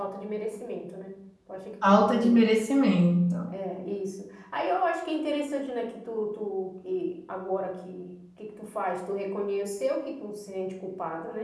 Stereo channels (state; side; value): identical; both; correlation 1.00